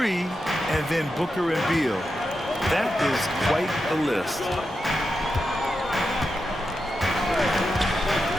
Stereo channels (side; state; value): both; normal; correlation 0.88